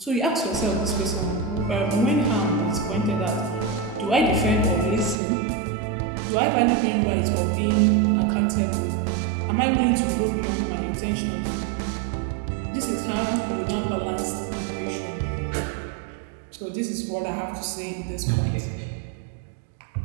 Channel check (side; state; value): left; drops out; at 5.2 s